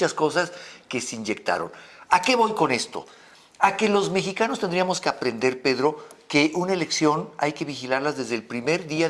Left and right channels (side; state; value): both; identical; correlation 1.00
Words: cosas que se inyectaron. ¿A qué voy con esto? A que los mexicanos tendríamos que aprender, Pedro, que una elección hay que vigilarlas desde el primer día